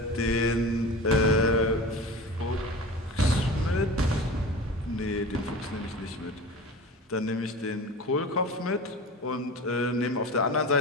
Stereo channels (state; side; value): normal; both; correlation 0.33